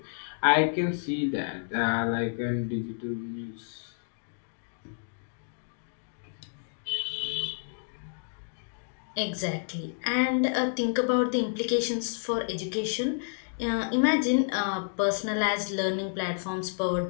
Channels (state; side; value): silent; right; digital silence